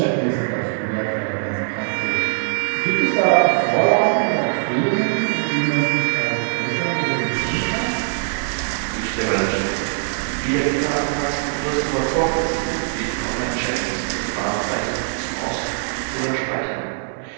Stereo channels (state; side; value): silent; left; digital silence